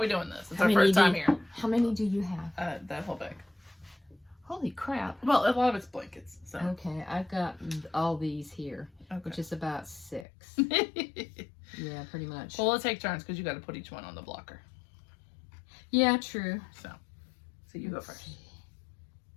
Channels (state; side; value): drops out; right; at 10.2 s